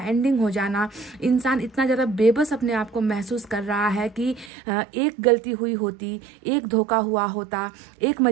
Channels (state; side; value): drops out; left; at 4.5 s